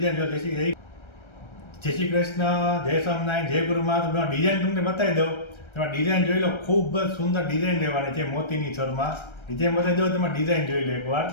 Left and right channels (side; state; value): right; late; 1.3 ms